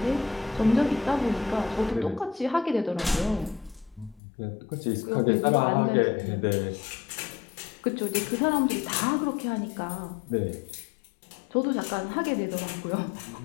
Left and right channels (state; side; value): drops out; right; at 4.2 s